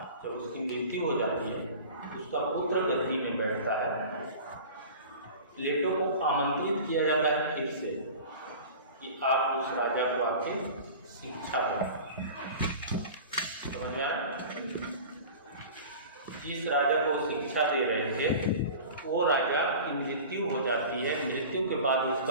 जब उसकी मृत्यु हो जाती है उसका पुत्र गद्दी में बैठता है। प्लेटो को आमंत्रित किया जाता है फिर से कि आप उस राजा को आके शिक्षा दें। समझ में आया? जिस राजा को शिक्षा दे रहे थे वो राजा की मृत्यु हो जाती है, मृत्यु के बाद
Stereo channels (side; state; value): both; inverted; correlation -0.38